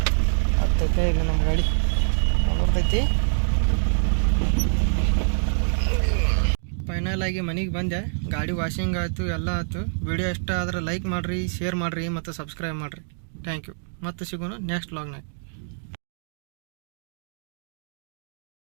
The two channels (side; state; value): left; silent; digital silence